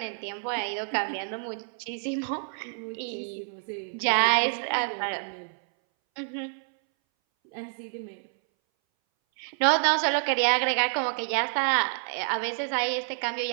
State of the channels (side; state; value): left; silent; 59 dB below the other